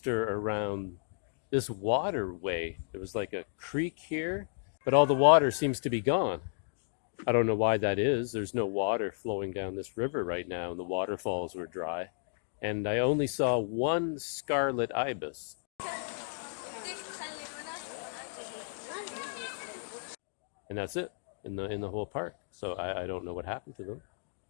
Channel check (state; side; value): silent; right; digital silence